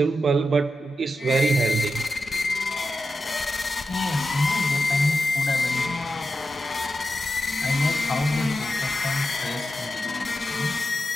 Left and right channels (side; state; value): both; normal; correlation 0.90